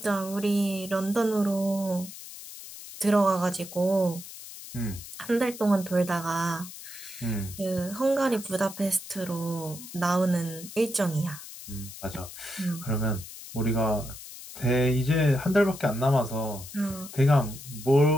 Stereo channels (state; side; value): noise; left; hiss, 14 dB below the sound